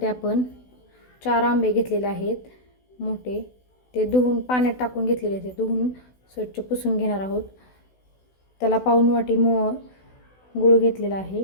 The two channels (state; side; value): late; right; 16 ms